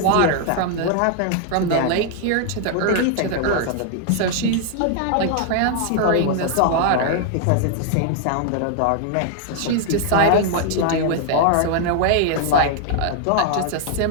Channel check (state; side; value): different; both; correlation 0.00